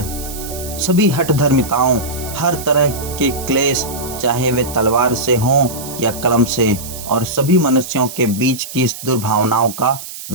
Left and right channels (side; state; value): right; noise; hiss, 11 dB below the sound